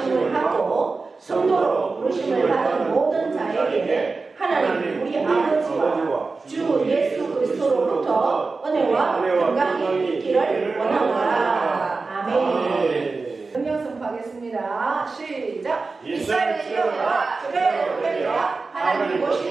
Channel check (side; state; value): left; quieter; 4.0 dB